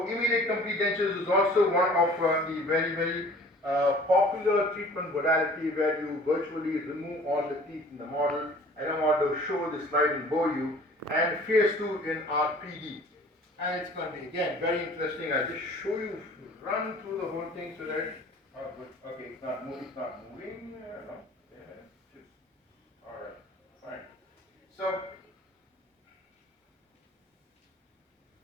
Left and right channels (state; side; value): normal; both; correlation 0.49